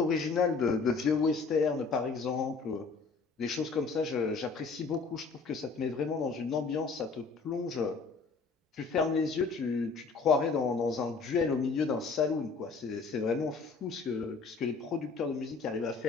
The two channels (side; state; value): right; quieter; 4.6 dB